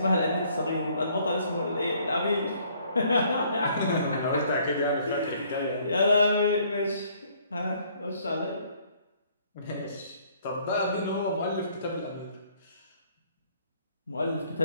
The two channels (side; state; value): both; inverted; correlation -0.63